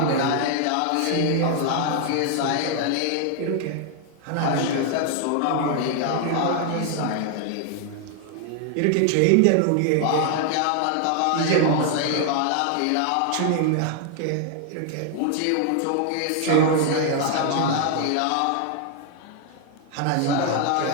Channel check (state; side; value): different; both; correlation 0.00